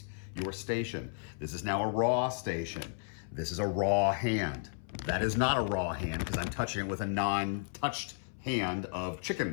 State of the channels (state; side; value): silent; right; 55 dB below the other